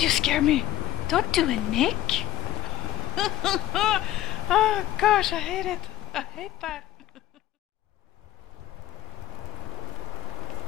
you scare me! Don't do it, Nick! Oh, gosh, I hate it. I hate that.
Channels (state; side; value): quieter; right; 13.9 dB